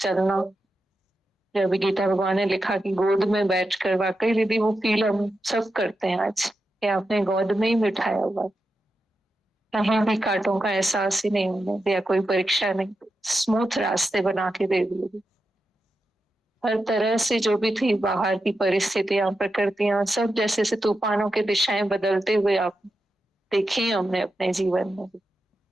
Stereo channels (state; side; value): normal; both; correlation 0.89